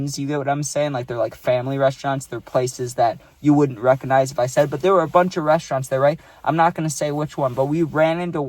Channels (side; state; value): both; identical; correlation 1.00